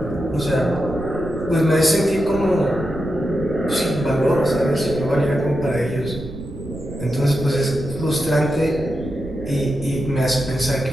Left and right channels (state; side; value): noise; right; rumble, 12 dB below the sound